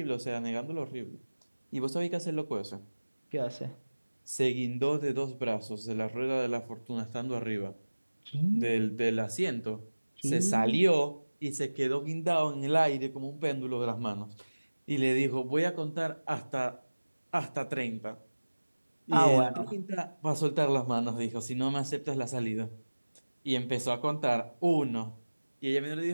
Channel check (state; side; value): inverted; both; correlation -1.00